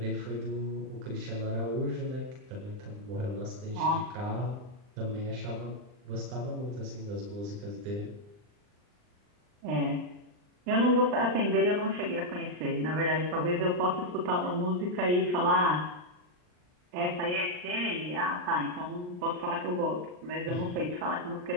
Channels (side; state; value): left; late; 39 ms